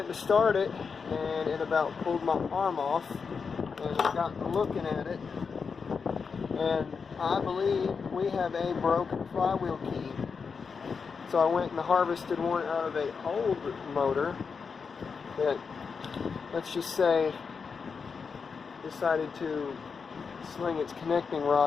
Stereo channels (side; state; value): right; quieter; 5.5 dB